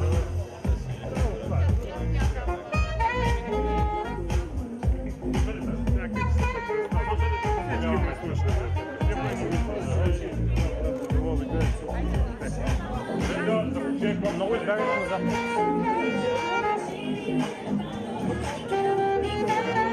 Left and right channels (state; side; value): identical; both; correlation 1.00